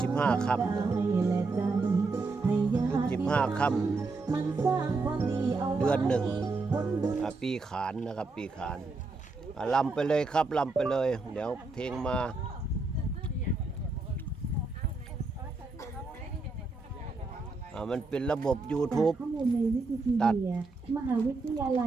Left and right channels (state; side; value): quieter; left; 3.7 dB